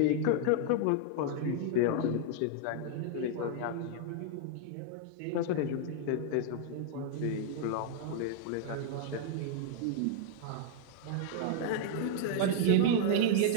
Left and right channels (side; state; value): both; different; correlation -0.01